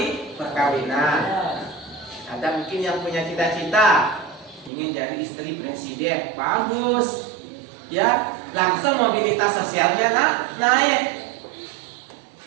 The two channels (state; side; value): drops out; left; at 4.7 s